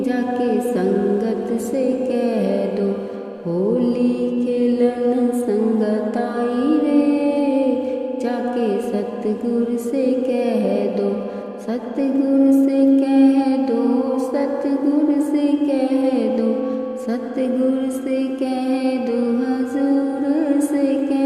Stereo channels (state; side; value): identical; both; correlation 1.00